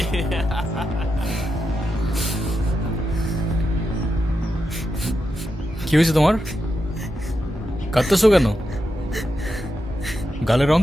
কি হয়েছে তোমার? কাঁদতেছো কেন? গালের রং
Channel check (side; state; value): both; normal; correlation 0.87